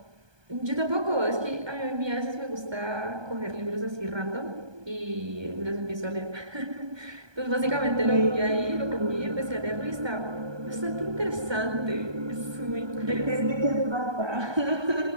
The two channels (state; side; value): late; left; 1.2 ms